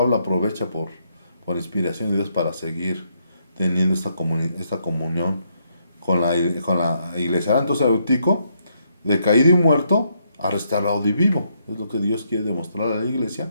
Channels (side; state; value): both; inverted; correlation -0.76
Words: aprovecha por inspiración de Dios para seguir teniendo esta comunión con la iglesia. Ahora, entonces Eutico, de caído y muerto, a restaurado y vivo. Es lo que Dios quiere demostrar a la iglesia,